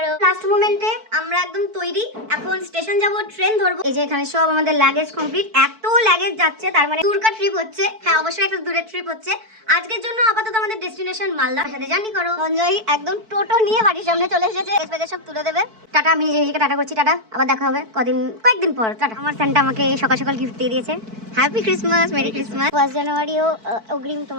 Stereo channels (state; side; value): late; left; 4.5 ms